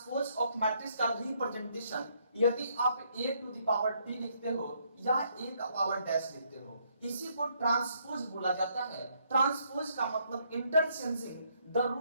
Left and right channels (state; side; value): inverted; both; correlation -0.71